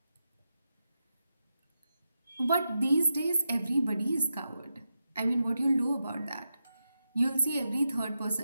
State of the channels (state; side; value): inverted; both; correlation -0.87